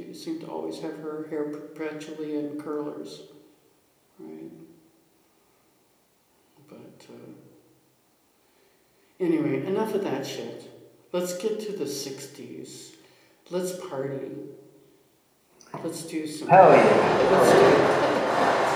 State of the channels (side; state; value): both; identical; correlation 1.00